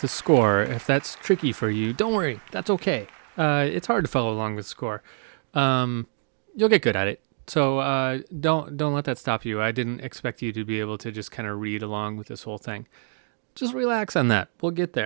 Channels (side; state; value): left; silent; digital silence